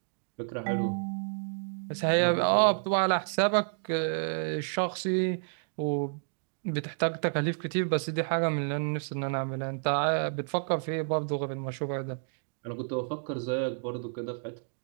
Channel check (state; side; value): silent; left; digital silence